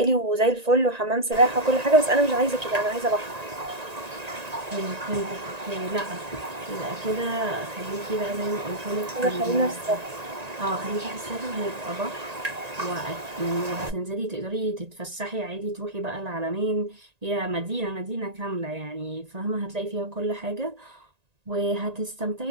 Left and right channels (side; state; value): left; late; 1.9 ms